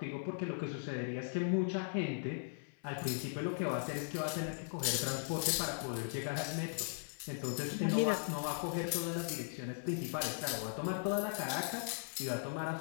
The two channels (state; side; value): silent; right; 52 dB below the other